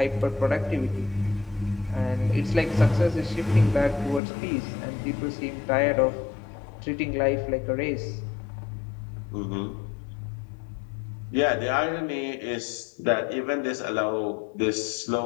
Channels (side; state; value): right; drops out; at 4.2 s